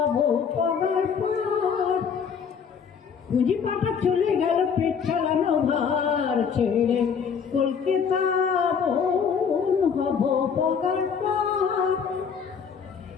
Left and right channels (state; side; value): quieter; right; 6.6 dB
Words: পগার পর পুঁজি পাটা চলে গেল পেট চালানো ভার ছেড়ে কলকাতা হবো পগার পর